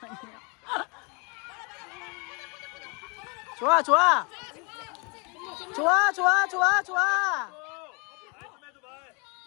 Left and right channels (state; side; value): quieter; right; 32.0 dB